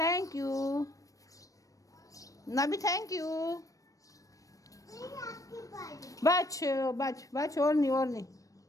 you Nabi, thank you. बच और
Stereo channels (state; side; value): late; right; 0.16 ms